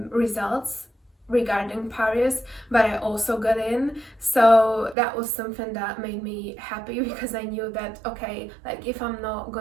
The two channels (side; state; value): left; drops out; at 5.0 s